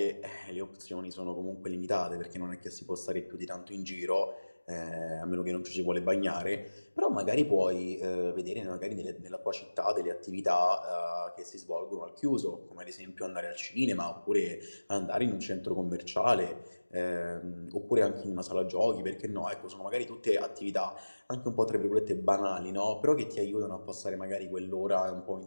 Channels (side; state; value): both; inverted; correlation -1.00